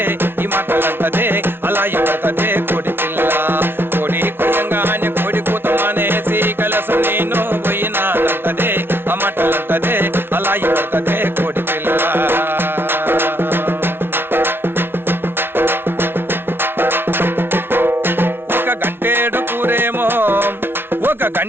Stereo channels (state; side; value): late; left; 0.11 ms